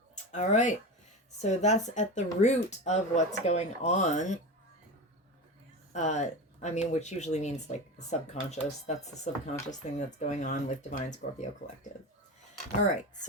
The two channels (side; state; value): both; normal; correlation 0.25